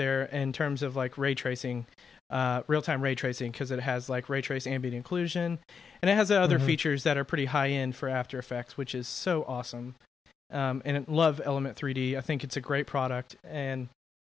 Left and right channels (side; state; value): right; quieter; 6.1 dB